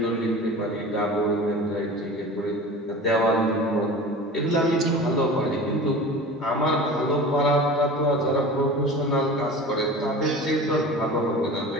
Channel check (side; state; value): both; normal; correlation 0.36